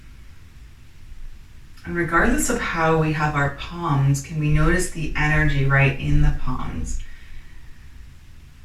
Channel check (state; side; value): identical; both; correlation 1.00